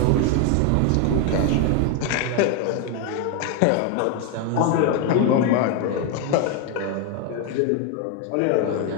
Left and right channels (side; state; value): both; different; correlation 0.01